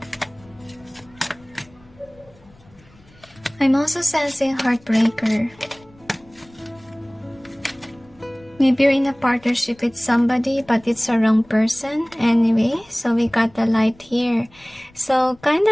I'm also sensing heartbreaker. Maybe you're in a partnership with somebody, but it's a wrong person. Anyway, so we got the light here. So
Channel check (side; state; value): left; noise; rumble, 27 dB below the sound